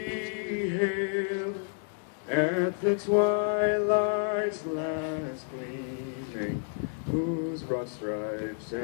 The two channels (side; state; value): right; silent; 58 dB below the other